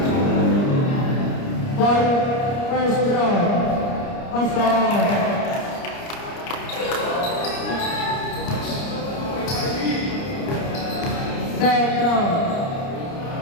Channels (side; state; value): right; late; 30 ms